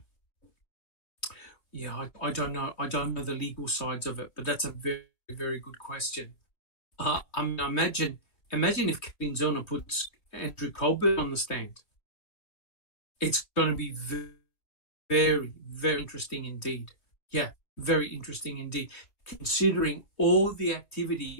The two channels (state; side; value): late; right; 3.0 ms